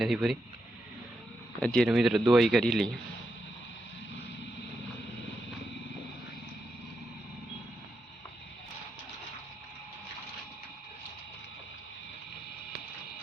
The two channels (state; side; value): normal; both; correlation 0.85